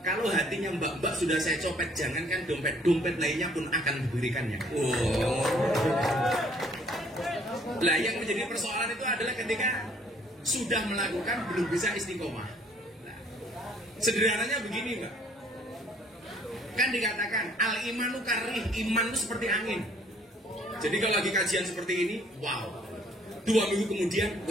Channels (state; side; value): normal; both; correlation 0.60